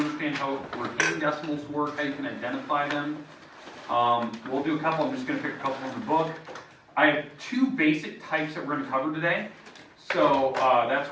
how repeating decimals work, how you can identify them. We'll do a couple. I'm just going to pick a couple from the book. I have two basic types that we're going to cover today. So that's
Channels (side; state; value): both; identical; correlation 1.00